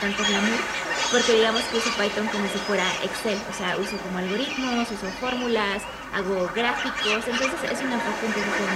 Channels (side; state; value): both; identical; correlation 1.00